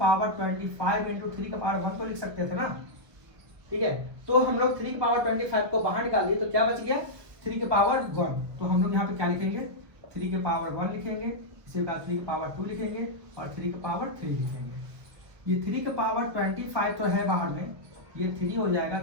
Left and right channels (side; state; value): left; late; 1.3 ms